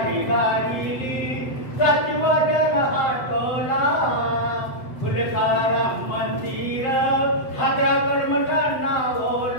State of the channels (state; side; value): late; right; 7.9 ms